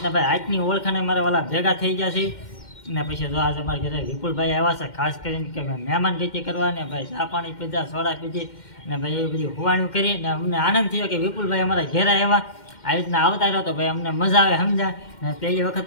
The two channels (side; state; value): right; late; 2.1 ms